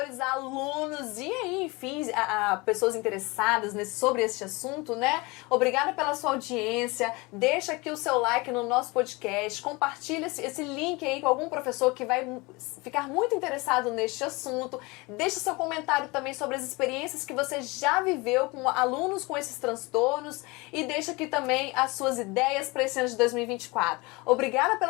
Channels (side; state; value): right; quieter; 25.0 dB